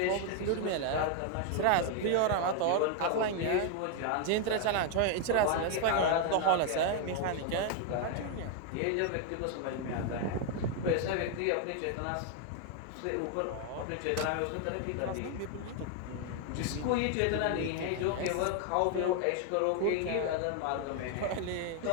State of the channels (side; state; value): both; different; correlation 0.01